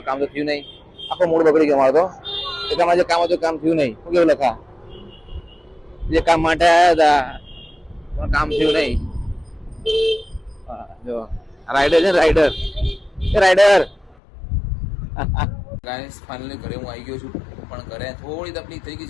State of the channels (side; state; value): right; drops out; at 14.2 s